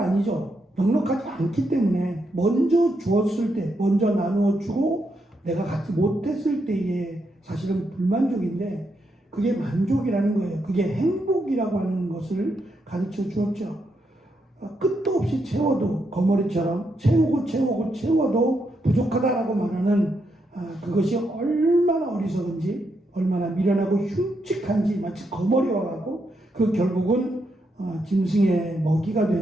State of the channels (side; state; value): both; normal; correlation 0.81